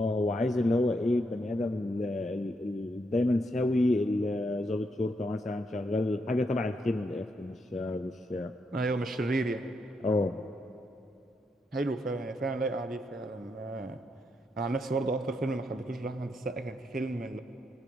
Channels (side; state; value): both; normal; correlation 0.80